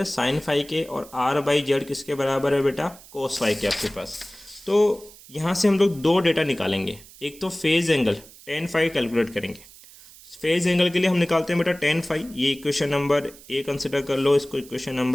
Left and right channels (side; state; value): right; noise; hiss, 21 dB below the sound